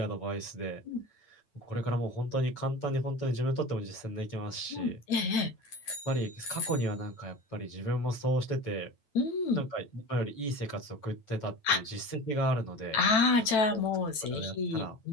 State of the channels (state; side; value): late; right; 9.0 ms